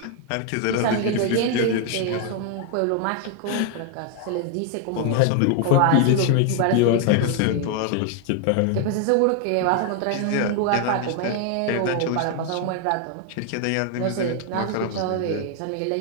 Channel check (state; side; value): different; both; correlation 0.01